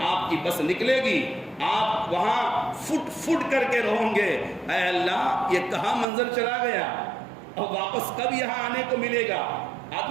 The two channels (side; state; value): left; drops out; at 6.1 s